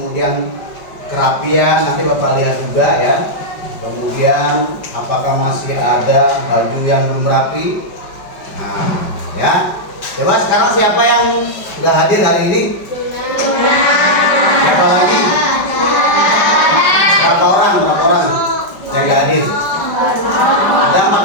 kerapian, nanti Bapak lihat juga ya. Kemudian apakah masih ada baju yang belum rapi. Nah ya, coba sekarang siapa yang nggak hadir hari ini? Siapa lagi? Berapa orang yang nggak hadir? Ada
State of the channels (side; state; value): right; late; 5.2 ms